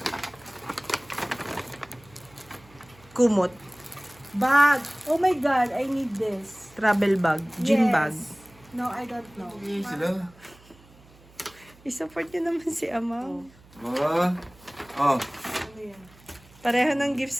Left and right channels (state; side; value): noise; right; hum, 26 dB below the sound